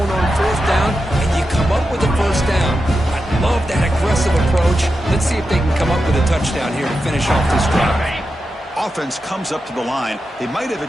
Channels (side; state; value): both; normal; correlation 0.89